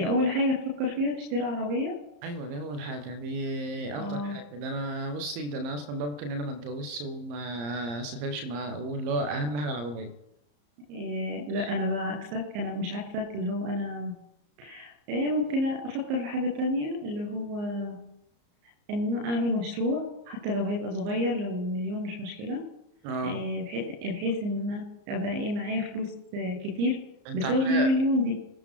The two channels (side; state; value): left; late; 34 ms